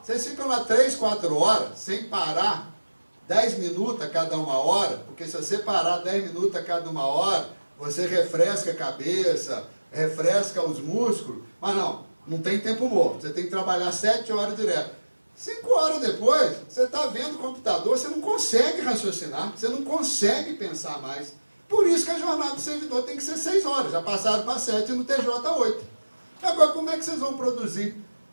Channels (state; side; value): inverted; both; correlation -1.00